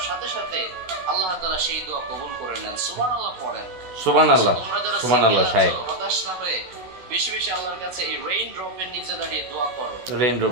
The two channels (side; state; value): left; late; 16 ms